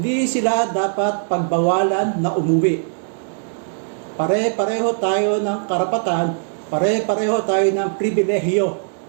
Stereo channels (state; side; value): silent; left; digital silence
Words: sila dapat pagbawalan na umuwi. Pare-pareho tayo ng karapatan, pare-pareho tayo ng pribilehiyo.